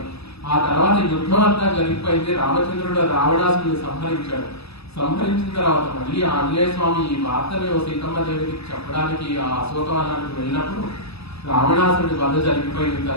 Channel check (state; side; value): late; right; 0.79 ms